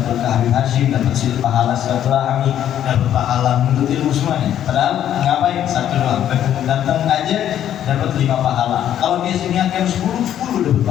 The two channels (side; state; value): right; quieter; 10.7 dB